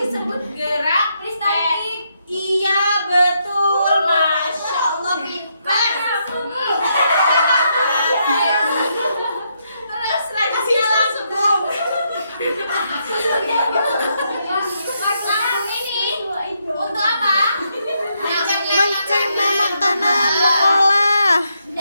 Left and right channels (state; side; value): inverted; both; correlation -0.78